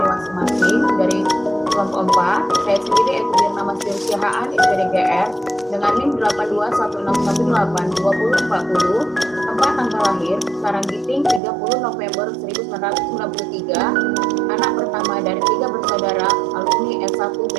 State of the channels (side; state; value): left; drops out; at 11.4 s